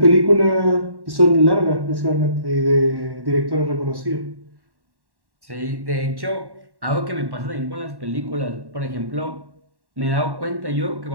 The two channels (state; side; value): late; left; 1.1 ms